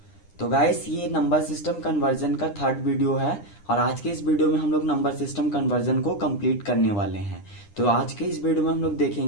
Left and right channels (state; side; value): late; right; 9.9 ms